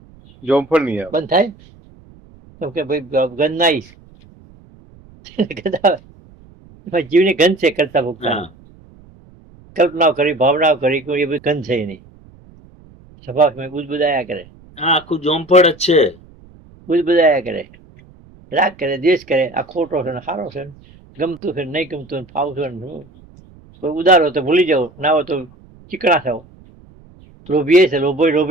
જોમફળ નહીં આવે. બંધ થાય તો કે ભાઈ ગંધ ના આવીશ. જીવની ગંધ છે કરતા ભૂખતા. કલ્પનાઓ કરી, ભાવનાઓ કરી, કોઈ એ બધી ગંધ છે નહીં. સ્વભાવ બુદબુદાયા કરે. હા, આખું જોમફળ જ છે. બુદબુદાયા કરે, રાગ કરે, દ્વેષ કરે. આ ખોટો છે ને સારો છે ને, ગમતું છે નહીં ગમતું, ફાવતું ને. કોઈ ઉદાર હોય તો ભૂલી જાઓ, ના હોય તો ચીકણા થાવ. લોભીએ છે,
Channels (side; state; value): right; noise; rumble, 25 dB below the sound